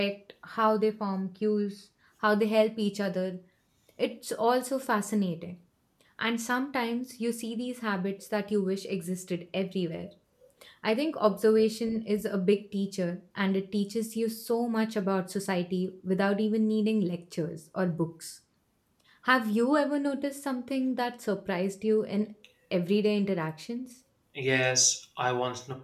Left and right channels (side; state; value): both; identical; correlation 1.00